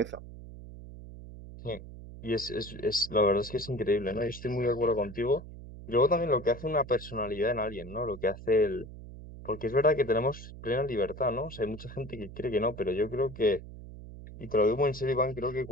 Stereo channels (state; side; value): noise; right; hum, 14 dB below the sound